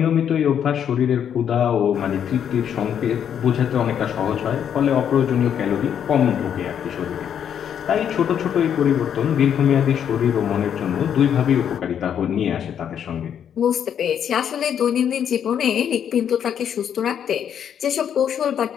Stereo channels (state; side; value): quieter; right; 8.8 dB